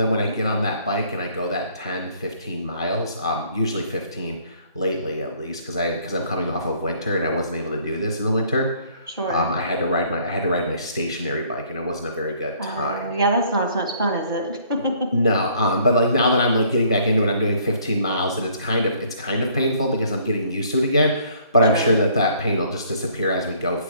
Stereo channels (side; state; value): both; inverted; correlation -0.61